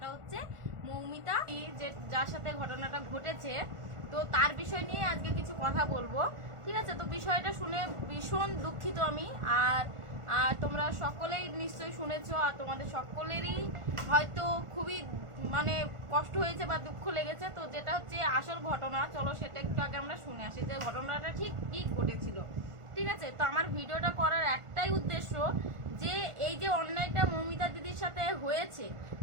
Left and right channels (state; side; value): late; left; 1.4 ms